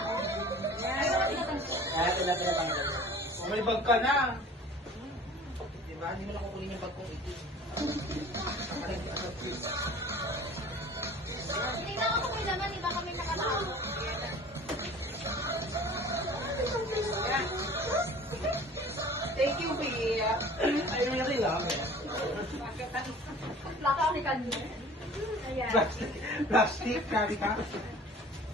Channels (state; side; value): normal; both; correlation 0.45